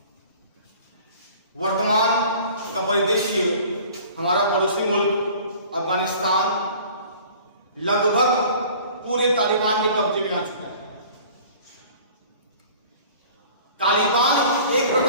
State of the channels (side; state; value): both; inverted; correlation -0.47